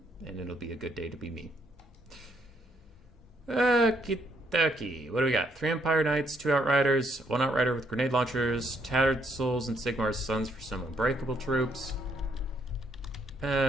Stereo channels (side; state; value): both; normal; correlation 0.71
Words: and it'll be a good day to be me. Okie-dokie. What do we got? 3 Empire Knights, 2 Outriders, 1 Outrider with grenade launchers, Tattered Souls and Sigmar's Sons for some unbreakable troops. It's